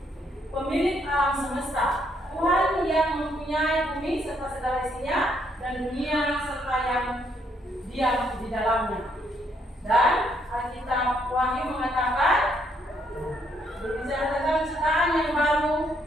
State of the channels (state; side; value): normal; both; correlation 0.72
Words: diam di dalamnya. Dan Alkitab Wahyu mengatakan berbicara tentang ciptaan yang baru